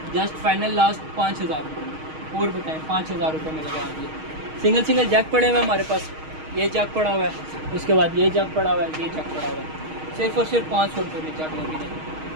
जस्ट फाइनल लास्ट 5000 रुपये में। और बताएं 5000 रुपये में लगा दिए। सिंगल जग पड़े हुए हैं हमारे पास, ये जग पड़ा हुआ है, उसके बाद ये जग पड़ा हुआ है, ये जग पड़ा हुआ है, सिर्फ और सिर्फ 500 रुपये में जग लगे हैं।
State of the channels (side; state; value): left; late; 6.4 ms